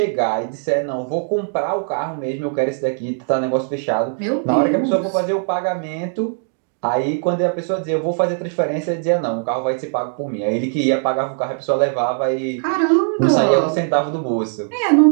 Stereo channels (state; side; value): silent; left; digital silence